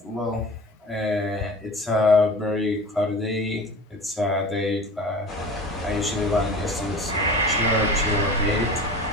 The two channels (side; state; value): both; normal; correlation 0.37